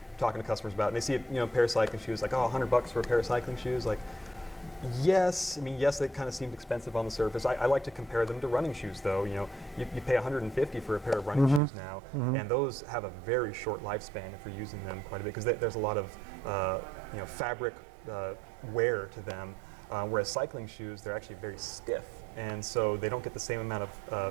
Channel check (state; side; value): drops out; left; at 11.6 s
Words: talking to customers about it, and they see a pair of cycling shoes, like, oh, $100 for a pair of cycling shoes, like. Yes, they kind of seemed expensive on the surface. I like to compare them to running shoes, though. You pay $150 for a pair of running shoes now, and those have a very short lifespan if you're using them quite a bit, because there's a lot of fabric wear to them. Whereas cycling shoes, they're actually very stiff, and so they don't get the same amount